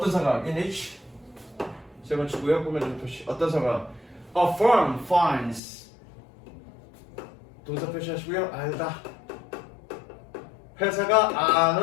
상황? In which 세 번째 구역 보면 표시. 어떤 상황? A firm finds 동사 표시하시고요. 알다. 회사가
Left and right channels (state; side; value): drops out; right; at 5.6 s